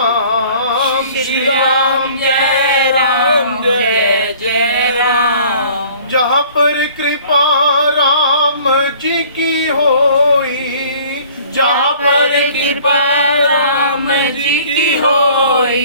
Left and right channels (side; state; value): both; inverted; correlation -0.51